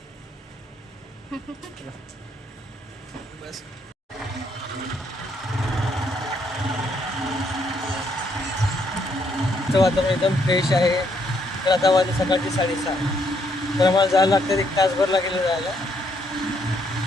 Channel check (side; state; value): both; normal; correlation 0.72